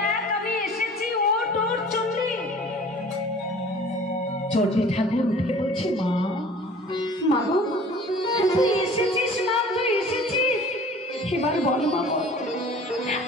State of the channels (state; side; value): normal; both; correlation 0.46